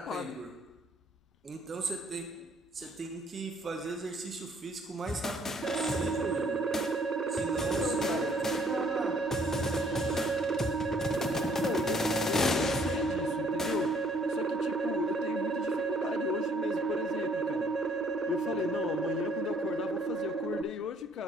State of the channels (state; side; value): normal; both; correlation 0.62